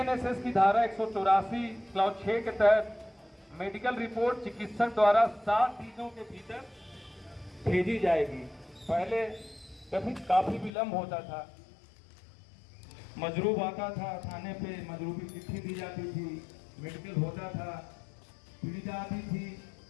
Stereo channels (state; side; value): drops out; right; at 10.7 s